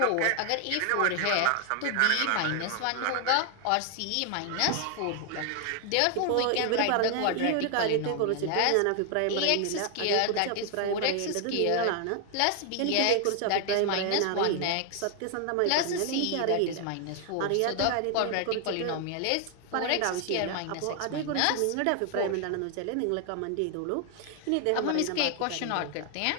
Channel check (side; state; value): both; different; correlation 0.00